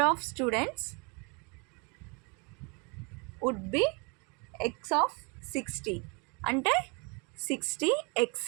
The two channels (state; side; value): quieter; left; 31.8 dB